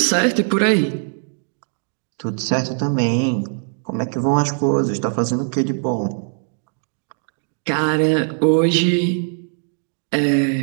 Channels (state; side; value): silent; left; 65 dB below the other